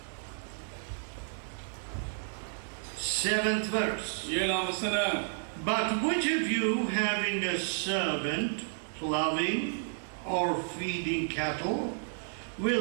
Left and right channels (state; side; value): silent; left; digital silence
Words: 7th verse. 7ஆம் வசனம். But which of you having a servant plowing or feeding cattle